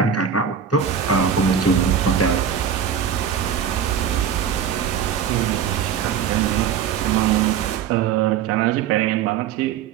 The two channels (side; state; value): left; quieter; 7.9 dB